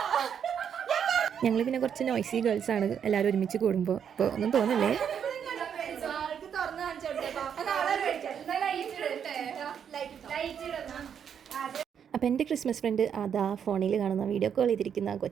ഞങ്ങൾ പിന്നെ കുറച്ച് നോയ്സി ഗേൾസാണ് എല്ലാവരും ഒരുമിച്ച് കൂടുമ്പോൾ. ഇപ്പോൾ ഒന്നും തോന്നില്ലേ. അപ്പോൾ എൻ്റെ ക്രിസ്മസ് ഫ്രണ്ട് അതാ ഫോണിൽ കാണുന്ന വീഡിയോ കോൾ ചെയ്തിരിക്കുന്ന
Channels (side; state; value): left; quieter; 8.1 dB